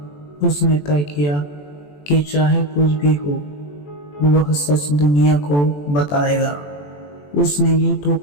उसने तय किया कि चाहे कुछ भी हो, वह सच दुनिया को बताएगा। उसने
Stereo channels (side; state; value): right; late; 21 ms